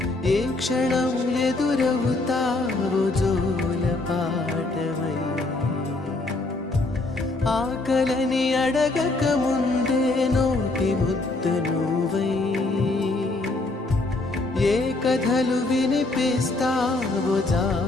ఏ క్షణం ఎదురవుతావో జోల పాటవై ఆకలని అడగక ముందే నోటి ముద్దు నువ్వై ఏ కథలు వినిపిస్తావో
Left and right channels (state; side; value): quieter; right; 3.1 dB